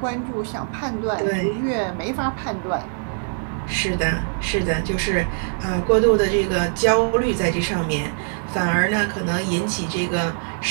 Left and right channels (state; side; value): silent; left; digital silence